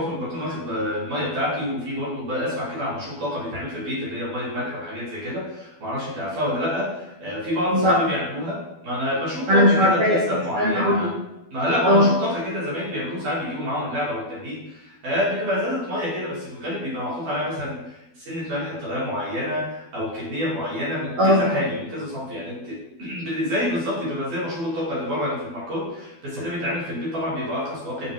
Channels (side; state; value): left; late; 12 ms